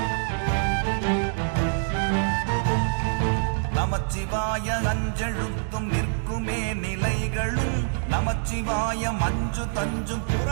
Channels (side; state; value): left; silent; 61 dB below the other